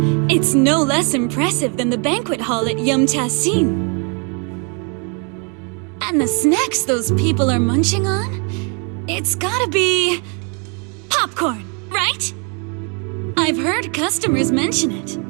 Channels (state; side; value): quieter; left; 36.3 dB